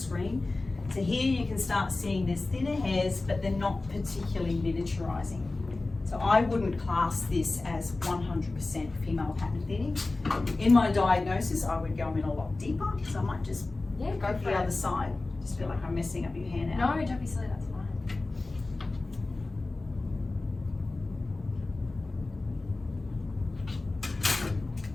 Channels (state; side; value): quieter; right; 3.2 dB